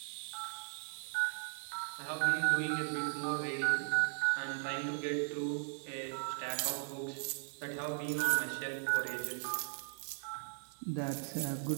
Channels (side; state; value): left; silent; digital silence